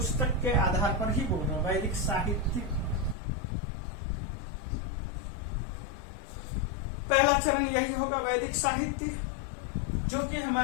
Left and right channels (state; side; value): drops out; right; at 3.2 s